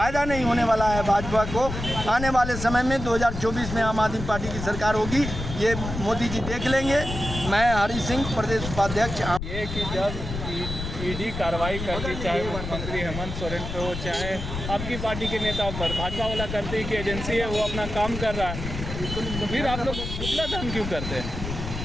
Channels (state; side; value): noise; left; rumble, 6 dB below the sound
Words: नहीं होने वाला है भाजपा को। आने वाले समय में 2024 में आम आदमी पार्टी की सरकार होगी, ये मोदी जी देख लेंगे। मैं हरि सिंह, प्रदेश उपाध्यक्ष। ये कि जब ईडी कार्रवाई करती, चाहे मुख्यमंत्री हेमंत सोरेन पे हो, चाहे आपकी पार्टी के नेताओं पर, भाजपा वाला करते हैं कि एजेंसी है वो अपना काम कर रहा है, तो फिर आप लोग पुतला दहन क्यों करते हैं?